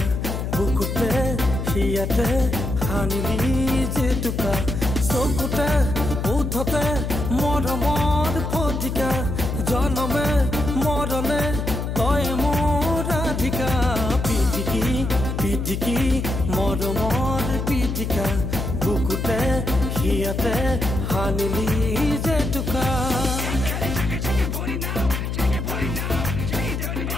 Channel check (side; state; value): left; noise; hum, 3 dB below the sound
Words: বুকুতে হিয়াতে হালিলি জেতুকা চকুতে উঠতে মৰমৰ ফটিকা জনমে মৰলে তই মোৰ ৰাধিকা পিটিকি পিটিকি মৰমৰ পিটিকা বুকুতে হিয়াতে হালিলি জেতুকা